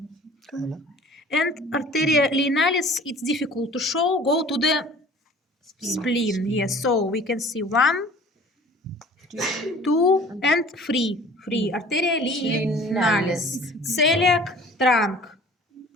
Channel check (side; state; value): both; normal; correlation 0.48